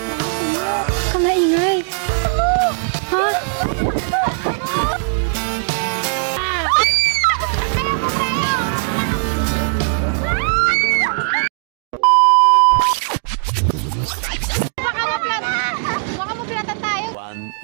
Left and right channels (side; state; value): left; silent; digital silence